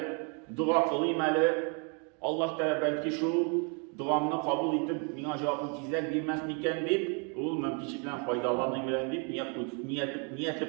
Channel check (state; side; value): quieter; left; 37.5 dB